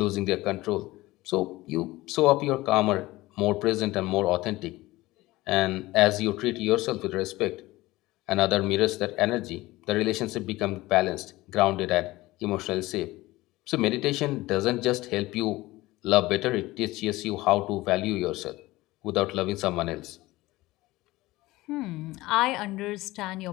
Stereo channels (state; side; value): quieter; right; 18.9 dB